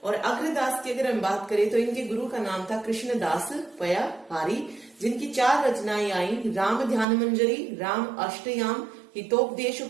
और अग्रदास की अगर हम बात करें तो इनके गुरु का नाम था कृष्णदास पयाहारी, जिनकी 4 रचनाएं आई, राम ध्यान मंजरी, राम अष्टयाम, हितोपदेश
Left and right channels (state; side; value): drops out; left; at 7.1 s